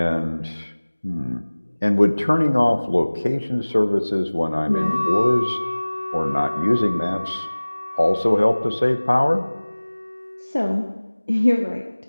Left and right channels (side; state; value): both; inverted; correlation -1.00